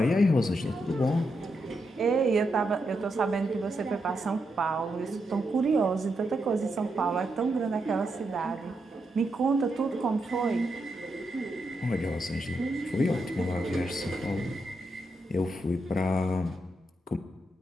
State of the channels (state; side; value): normal; both; correlation 0.83